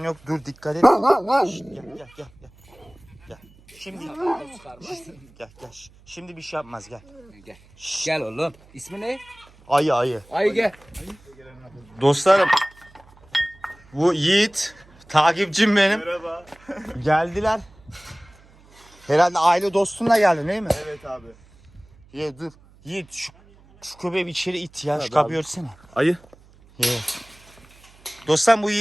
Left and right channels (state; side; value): noise; right; hum, 27 dB below the sound